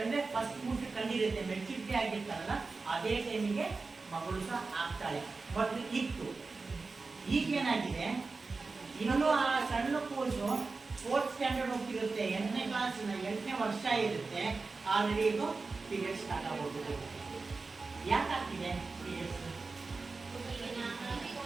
ಅಂದ್ರೆ ಫಸ್ಟ್ ಮುಟ್ಟು ಕಂಡಿರುತ್ತೆ, ಮೆಚುರಿಟಿ ಆಗಿರ್ತಾರಲ್ಲ ಅದೇ ಟೈಮಿಗೆ ಮಗಳು ಸಹ ಆಗ್ತಾಳೆ. ಮೊದಲು ಇತ್ತು, ಈಗೇನಾಗಿದೆ, ಇನ್ನೂ ಆ ಸಣ್ಣ ಕೂಸು 4th ಸ್ಟ್ಯಾಂಡರ್ಡ್ ಹೋಗ್ತಿರುತ್ತೆ, 8ನೇ ಕ್ಲಾಸಿನ 8ನೇ ವರ್ಷ ಇರುತ್ತೆ, ಆಲ್ರೆಡಿ ಇದು ಪೀರಿಯಡ್ ಸ್ಟಾರ್ಟ್ ಆಗೋಗ್ತದೆ. ಯಾಕಾಗ್ತಿದೆ ಪೀರಿಯಡ್ಸ್?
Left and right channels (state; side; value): quieter; left; 4.0 dB